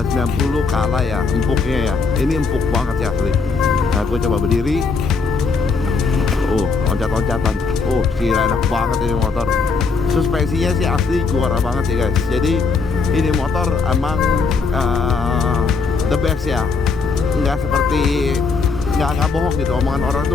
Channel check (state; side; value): quieter; right; 4.6 dB